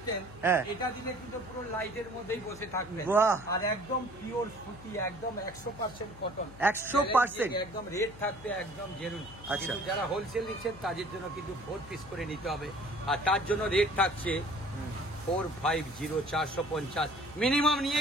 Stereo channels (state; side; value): noise; left; hum, 18 dB below the sound